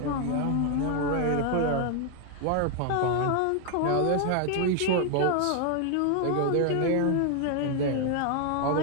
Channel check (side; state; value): both; different; correlation 0.00